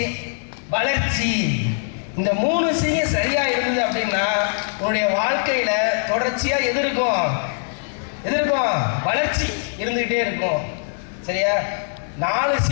வளர்ச்சி. இந்த 3 சியும் சரியா இருந்தது அப்படின்னா உன்னுடைய வாழ்க்கையில தொடர்ச்சியா எது இருக்கும்? வளர்ச்சி இருந்துகிட்டே இருக்கும். சரியா? 4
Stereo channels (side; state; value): right; silent; digital silence